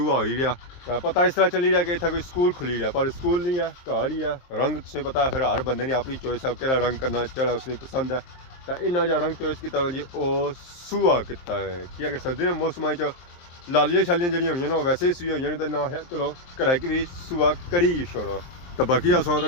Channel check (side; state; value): right; late; 23 ms